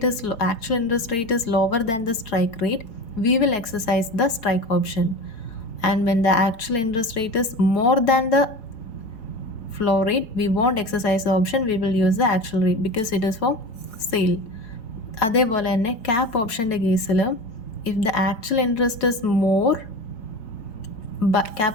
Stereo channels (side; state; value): right; late; 4.5 ms